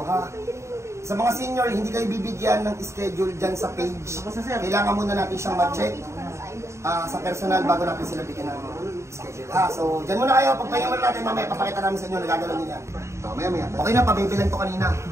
ha. Sa mga senior, hindi kayo bibigyan ng schedule dyan sa page. Kailangan muna natin siyang ma-check sa personal bago natin sila bigyan ng schedule. So, dyan muna kayo. Pagpahinga natin mamaya, papakita namin sa inyo, nagagalaw nyo yan. So, maya. Okay na, pabibilan to kanina.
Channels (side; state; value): left; late; 0.14 ms